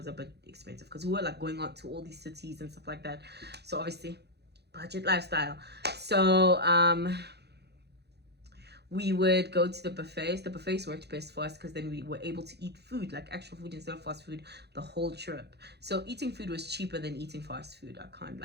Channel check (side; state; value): left; late; 0.48 ms